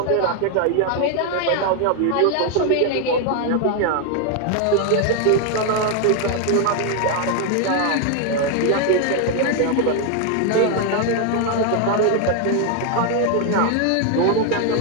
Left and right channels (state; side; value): different; both; correlation 0.01